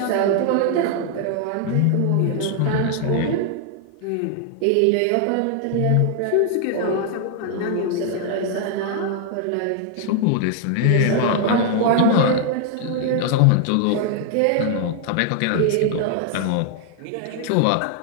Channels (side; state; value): both; different; correlation 0.00